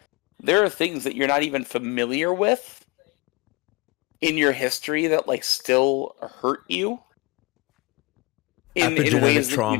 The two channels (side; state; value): right; quieter; 25.3 dB